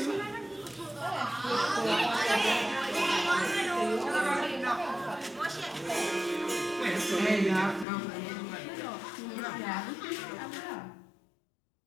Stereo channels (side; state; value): right; drops out; at 7.9 s